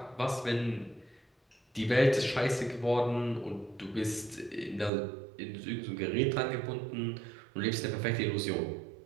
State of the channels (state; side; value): drops out; left; at 4.9 s